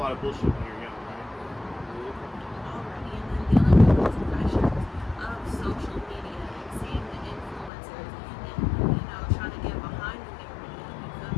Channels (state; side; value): drops out; right; at 7.7 s